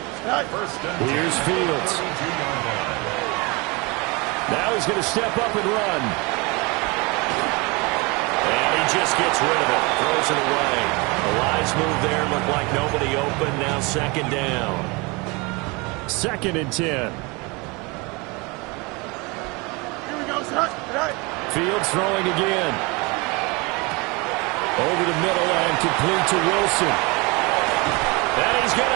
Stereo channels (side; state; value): left; quieter; 27.2 dB